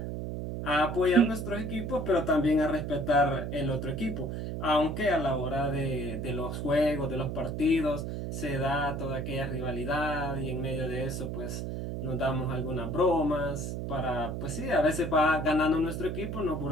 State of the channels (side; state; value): right; noise; hum, 4 dB below the sound